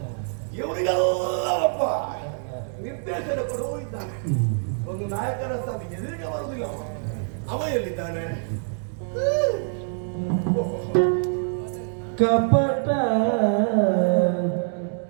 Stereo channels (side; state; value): left; silent; digital silence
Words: ಇವರಿಗೆಲ್ಲ ಒಬ್ಬ ನಿರ್ದೇಶನ ಕೊಡುವ ಇದ್ದಾನೆ. ಒಂದು ನಾಯಕನ ಸ್ಥಾನ ಎದುರಿಗೆ ಬರುವುದಿಲ್ಲ. ಅವ ಎಲ್ಲಿದ್ದಾನೆ? ಕಪಟ